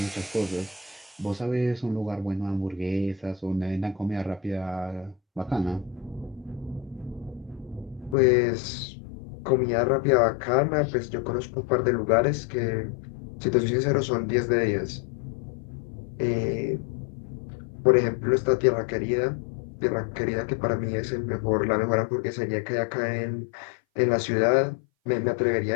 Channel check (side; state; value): right; drops out; at 8.2 s